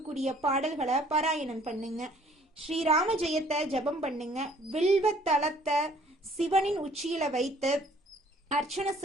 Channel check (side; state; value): both; normal; correlation 0.57